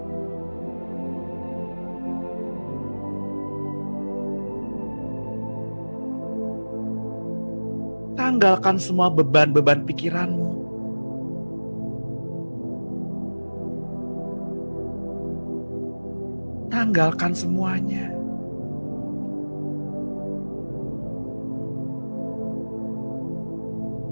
Tanggalkan semua beban-beban pikiranmu. Tanggalkan semuanya.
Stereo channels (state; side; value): inverted; both; correlation -1.00